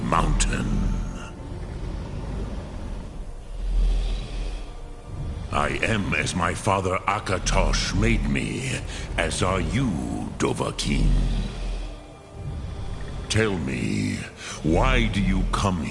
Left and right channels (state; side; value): identical; both; correlation 1.00